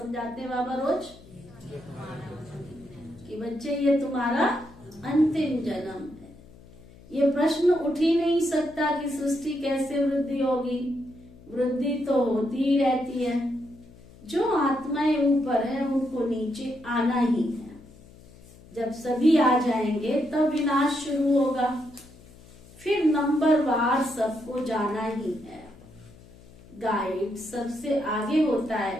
हैं बाबा रोज? कि बच्चे ये तुम्हारा अंतिम जन्म है। ये प्रश्न उठ ही नहीं सकता कि सृष्टि कैसे वृद्धि होगी। वृद्धि तो होती ही रहती है। जो आत्माएं ऊपर है उनको नीचे आना ही है। जब सभी आ जाएंगे तब विनाश शुरू होगा। फिर नंबर वार सबको जाना ही है। गाइड सबसे आगे होता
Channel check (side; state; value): left; noise; hum, 22 dB below the sound